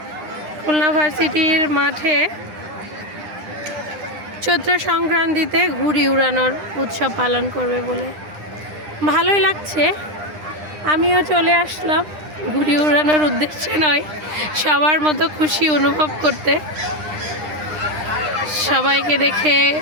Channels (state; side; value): late; left; 9.9 ms